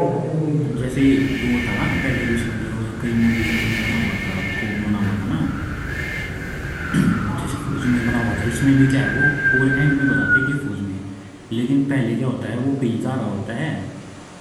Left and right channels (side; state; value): both; identical; correlation 1.00